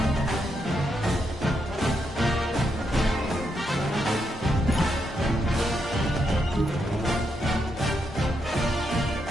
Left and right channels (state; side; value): normal; both; correlation 0.81